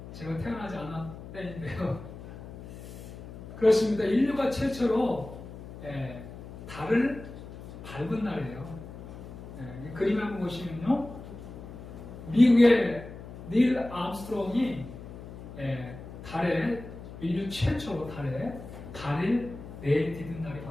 제가 태어나지 않았 때인데요. 그렇습니다. 인류가 최초로 달을 밟은 날이에요. 그림 한번 보시면요. 미국의 닐 암스트롱이 달에 인류 최초로 달에 발을 내디딘 날이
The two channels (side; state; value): left; noise; hum, 13 dB below the sound